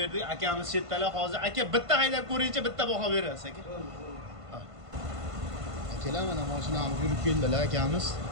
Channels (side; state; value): left; late; 1.5 ms